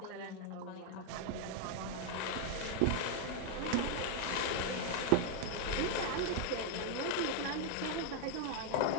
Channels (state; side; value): different; both; correlation 0.01